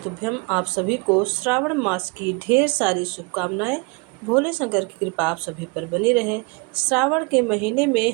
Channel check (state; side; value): quieter; left; 29.6 dB